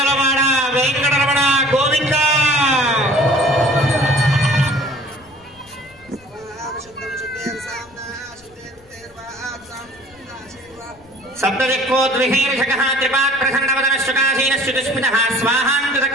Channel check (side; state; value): left; noise; rumble, 29 dB below the sound